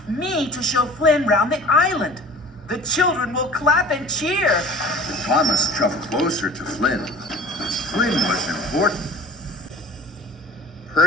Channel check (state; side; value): normal; both; correlation 0.43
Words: me to show Flynn round the island. The children will clap and cheer. Thomas shoved closer to Flynn. Flynn was important.